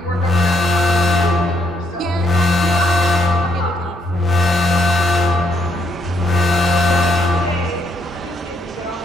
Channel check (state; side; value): normal; both; correlation 0.74